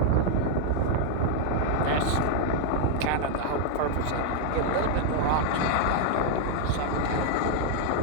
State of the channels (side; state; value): both; different; correlation 0.00